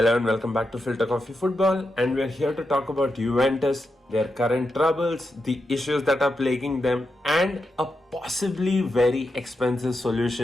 and welcome back to Filter Coffee Football, and we're here to talk about Juventus, their current troubles, the issues that are plaguing them, and a possibly very expensive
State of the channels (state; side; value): normal; both; correlation 0.86